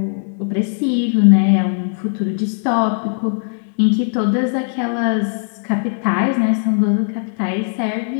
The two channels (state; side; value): silent; right; 67 dB below the other